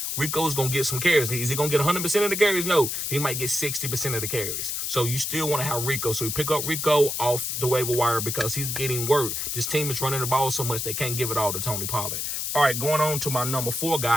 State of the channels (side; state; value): left; noise; hiss, 2 dB below the sound